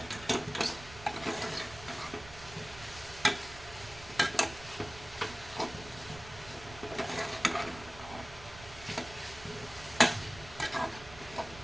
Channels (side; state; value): right; noise; rumble, 16 dB below the sound